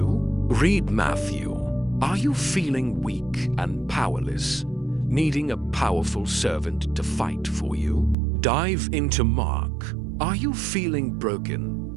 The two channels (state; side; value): drops out; left; at 8.2 s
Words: Read Matthew. Are you feeling weak and powerless, needing a powerful servant to fight for you? Dive into Mark. Are you feeling